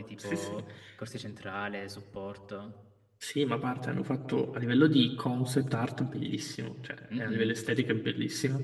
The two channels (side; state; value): both; identical; correlation 1.00